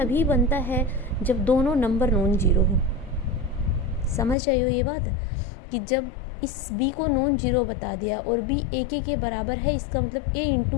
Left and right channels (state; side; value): drops out; right; at 4.4 s